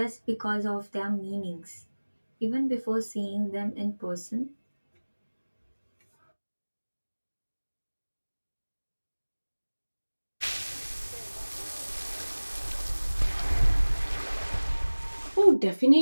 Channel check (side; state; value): both; inverted; correlation -1.00